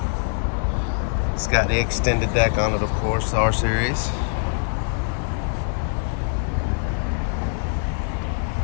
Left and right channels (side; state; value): right; silent; 63 dB below the other